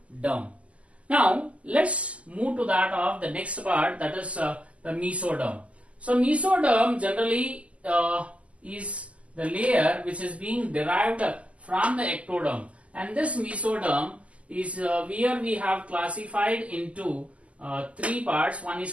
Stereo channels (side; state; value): left; late; 0.064 ms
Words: Now let's move to that of the next part, that is the mesoderm. So mesoderm generally is the layer which is being derived from the ectoderm, and this mesoderm is where we have classified into three parts. One